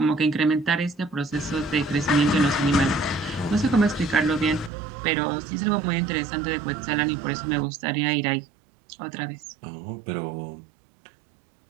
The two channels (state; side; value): drops out; left; at 4.7 s